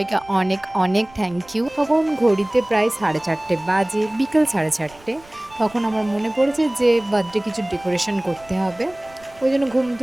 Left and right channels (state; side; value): noise; right; rumble, 25 dB below the sound